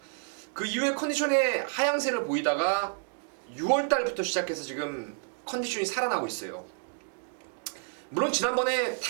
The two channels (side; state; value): left; silent; 58 dB below the other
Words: 그 이후에 컨디션의 하향세를 보이다가 6월달부터 시작해서 지금 컨디션이 살아나고 있어요. 물론 지난번에